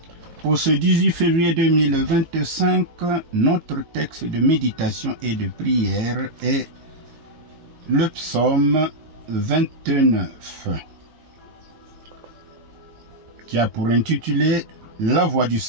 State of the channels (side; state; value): left; late; 17 ms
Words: Pour ce 18 février 2025, notre texte de méditation et de prière est le psaume 29, qui a pour intitulé « La voix du